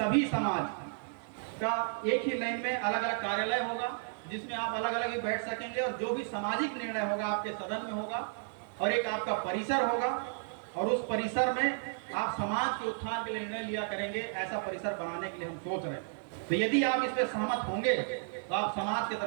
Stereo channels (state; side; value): silent; left; digital silence